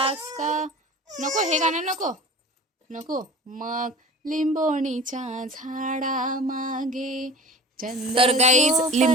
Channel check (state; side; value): normal; both; correlation 0.39